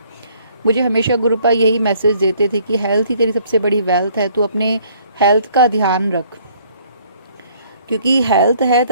मुझे हमेशा गुरुपा यही मैसेज देते थे कि हेल्थ ही तेरी सबसे बड़ी वेल्थ है, तू अपने हेल्थ का ध्यान रख, क्योंकि हेल्थ है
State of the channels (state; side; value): inverted; both; correlation -0.61